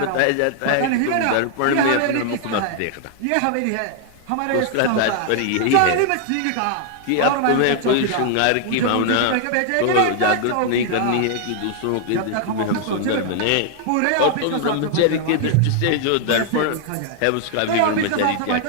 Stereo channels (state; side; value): different; both; correlation 0.00